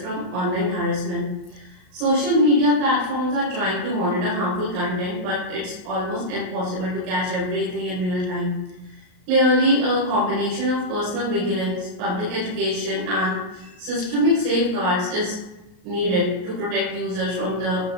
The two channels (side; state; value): left; late; 38 ms